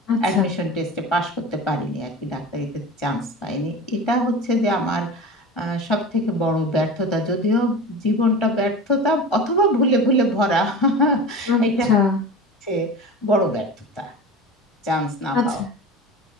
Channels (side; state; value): both; normal; correlation 0.32